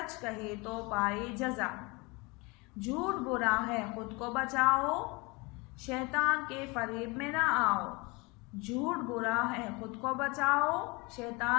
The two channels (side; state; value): right; quieter; 26.7 dB